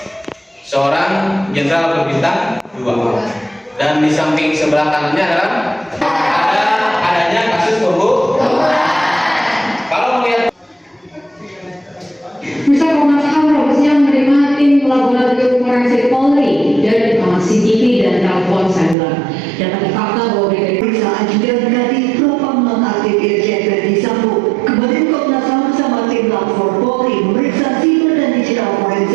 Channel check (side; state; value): left; drops out; at 18.9 s